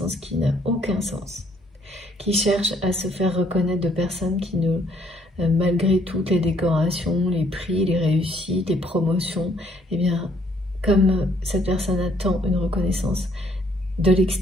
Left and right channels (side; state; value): both; normal; correlation 0.66